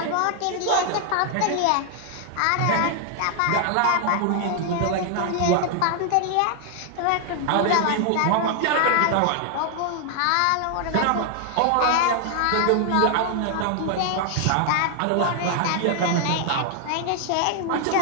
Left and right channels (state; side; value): different; both; correlation 0.00